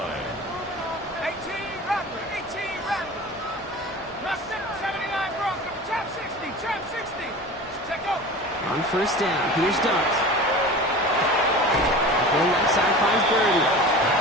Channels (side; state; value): both; normal; correlation 0.35